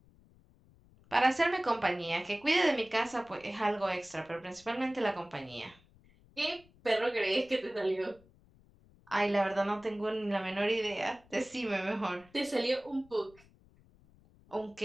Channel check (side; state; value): left; noise; rumble, 28 dB below the sound